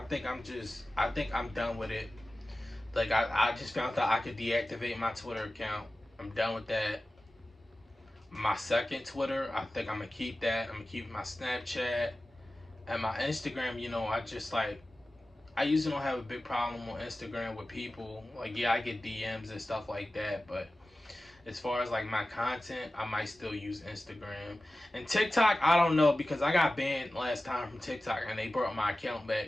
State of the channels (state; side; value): normal; both; correlation 0.96